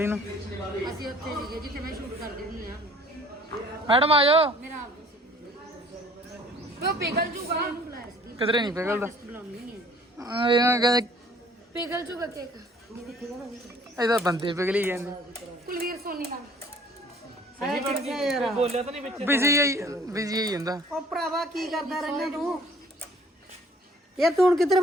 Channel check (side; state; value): both; normal; correlation 0.55